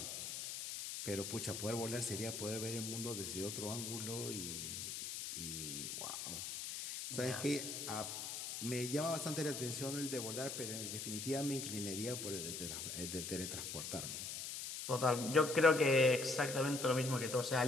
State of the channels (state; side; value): noise; left; hiss, 5 dB below the sound